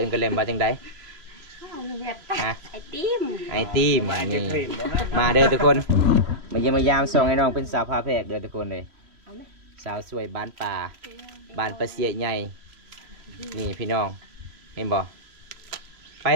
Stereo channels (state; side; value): late; left; 3.1 ms